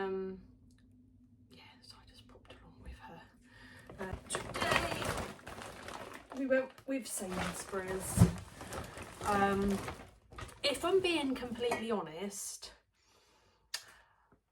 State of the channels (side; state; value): both; identical; correlation 1.00